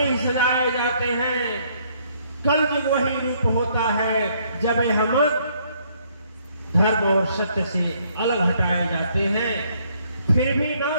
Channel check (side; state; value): both; inverted; correlation -0.67